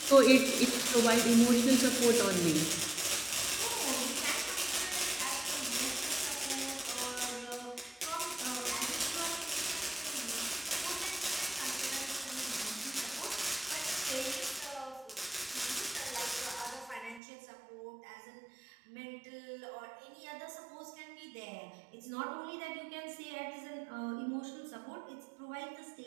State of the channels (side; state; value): left; drops out; at 17.2 s